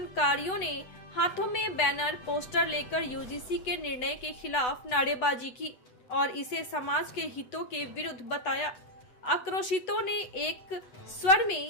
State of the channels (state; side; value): late; right; 8.1 ms